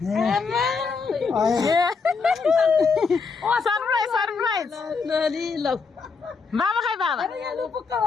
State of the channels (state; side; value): quieter; right; 4.9 dB